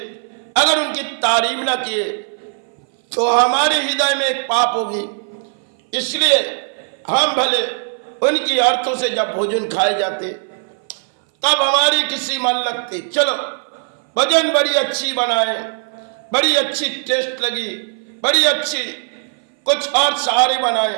अगर उनकी तारीफ ना किए तो हमारे हृदय में एक पाप होगी। इसलिए हम भले उनकी अर्थों से जब भोजन खाए जाते तब हमारी किसी मन लगती, चलो भोजन बड़ी अच्छी बनाए, बड़ी अच्छी टेस्ट लगी, बड़ी अच्छी कुछ और सहारे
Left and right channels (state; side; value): silent; left; 59 dB below the other